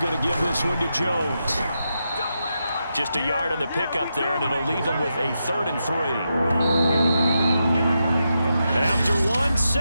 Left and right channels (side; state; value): both; inverted; correlation -0.86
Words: going to give this one to Jones. Just a yard on the pickup there, and it'll leave him with a 3rd and 3. After one,